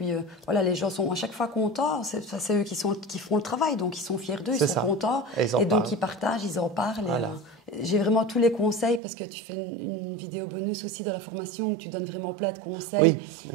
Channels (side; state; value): left; drops out; at 9.0 s